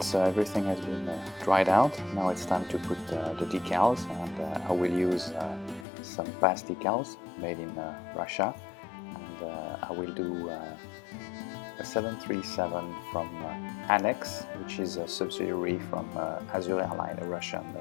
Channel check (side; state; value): right; drops out; at 5.9 s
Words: Everything has been dried out. Now it's time to put the decals, and I will use some past decals made in Russia, and I will do a 737 from Anex, which is a subsidiary from Azur Airline, a Russian